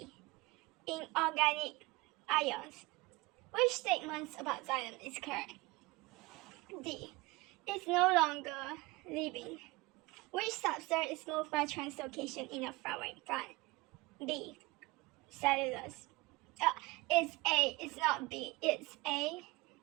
Inorganic ions. Which statements about xylem is correct? D. It's no longer living. Which substrate is moved by translocation in a flowering plant? B. Cellulose. It's A. It's not B. It's A.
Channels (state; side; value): quieter; left; 22.6 dB